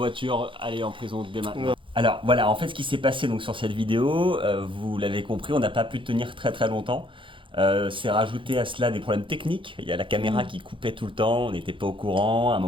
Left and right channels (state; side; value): late; left; 0.25 ms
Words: allez en prison dès maintenant. Ouais. Alors voilà, en fait ce qui s'est passé donc sur cette vidéo, vous l'avez compris, on n'a pas pu tenir très longtemps. C'est rajouté à cela des problèmes techniques. Il y a la caméra qui coupait tout le temps, on n'était pas au courant. À un